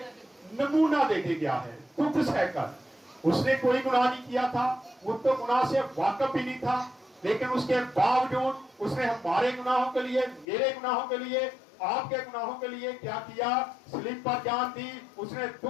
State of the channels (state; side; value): drops out; right; at 10.5 s